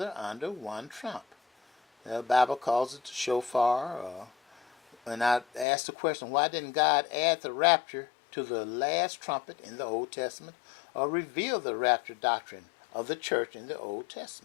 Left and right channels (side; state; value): right; drops out; at 5.7 s